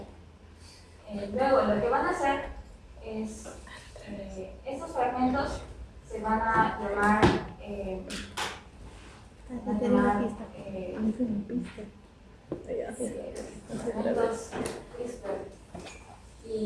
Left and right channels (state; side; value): identical; both; correlation 1.00